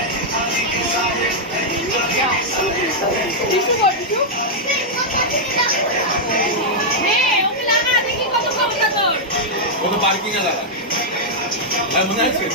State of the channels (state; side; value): normal; both; correlation -0.05